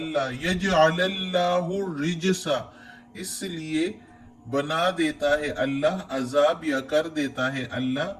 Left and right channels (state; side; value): identical; both; correlation 1.00